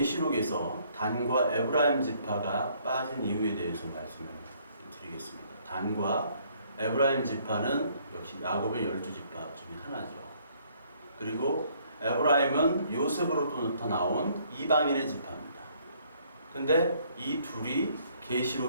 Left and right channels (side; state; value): both; inverted; correlation -0.64